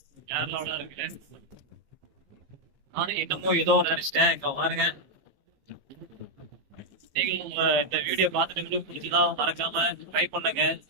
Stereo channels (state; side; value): late; left; 15 ms